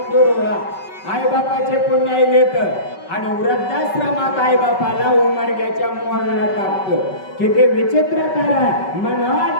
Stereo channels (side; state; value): right; late; 5.3 ms